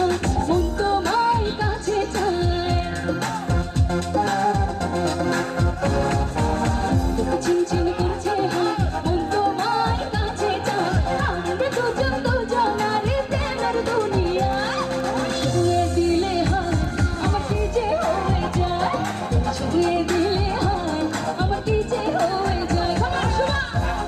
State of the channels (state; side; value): identical; both; correlation 1.00